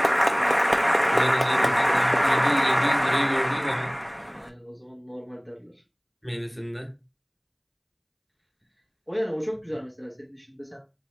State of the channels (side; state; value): both; identical; correlation 1.00